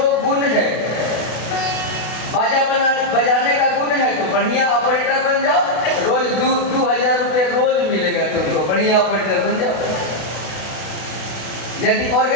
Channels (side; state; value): right; late; 32 ms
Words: गुण है, बाजा बजाने का गुण है तो बढ़िया ऑपरेटर बन जाओ, रोज 2,000 रुपये रोज मिलेगा तुमको, बढ़िया ऑपरेटर बन जाओ। यदि